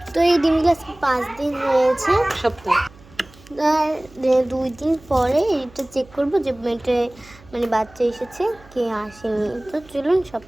তো এই ডিমগুলো 5 দিন হয়েছে, সপ্তাহ 2 দিন পরে এটা চেক করবো যে এটা মানে বাচ্চা এসেছে কি আসেনি। তো চলুন সব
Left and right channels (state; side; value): noise; right; hum, 24 dB below the sound